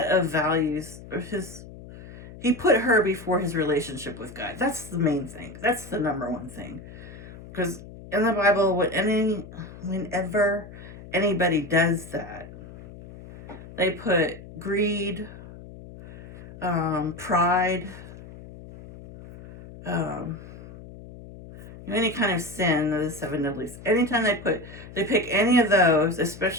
of values, or he put her before his relationship with God. That's the main thing. That's the number one thing. Because in the Bible, whenever anybody does that, they put greed, pride, any kind of sin, the seven deadlies. Anytime they pick any of those,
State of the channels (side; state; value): left; noise; hum, 16 dB below the sound